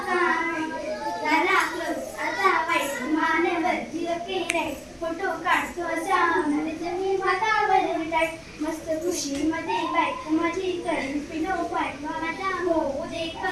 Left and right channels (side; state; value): both; identical; correlation 1.00